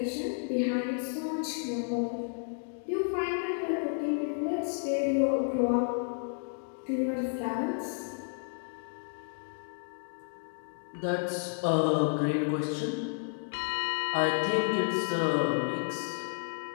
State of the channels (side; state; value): right; silent; 57 dB below the other